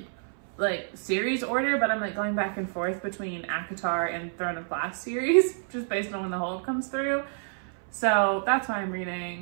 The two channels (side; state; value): left; silent; 59 dB below the other